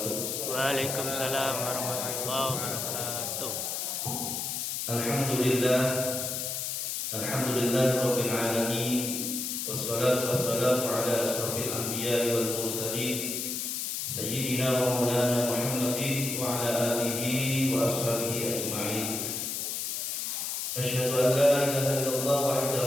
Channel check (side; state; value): left; noise; hiss, 2 dB below the sound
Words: Waalaikumsalam warahmatullahi wabarakatuh. Alhamdulillah, alhamdulillah rabbil alamin. Wassalatu wassalamu ala asyrafil anbiya'i wal mursalin sayyidina wa maulana Muhammadin wa ala alihi wa ashabihi ajma'in. Asyhadu an la ilaha illallah